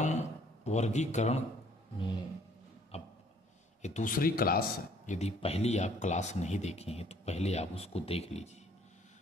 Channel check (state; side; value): normal; both; correlation 0.60